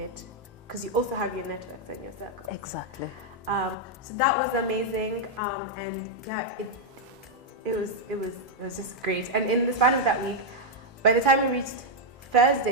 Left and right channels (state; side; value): normal; both; correlation -0.02